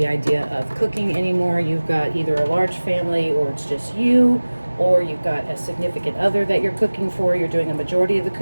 idea of cooking anymore. You've got either a large family, or it's just you, or you've got a significant other that you're cooking for. You're doing a majority of the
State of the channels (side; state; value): both; inverted; correlation -1.00